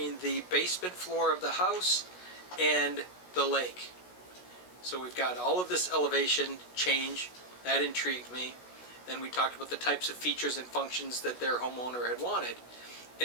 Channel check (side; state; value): right; late; 16 ms